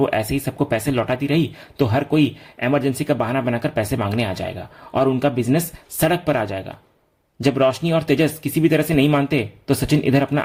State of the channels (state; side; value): identical; both; correlation 1.00